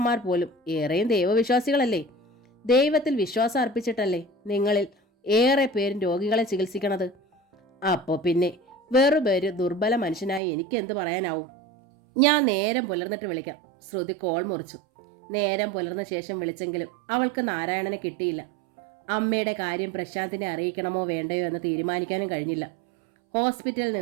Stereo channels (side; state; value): left; drops out; at 10.4 s